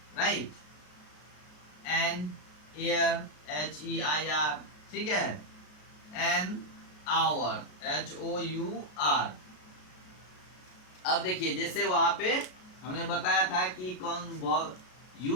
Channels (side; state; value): right; late; 33 ms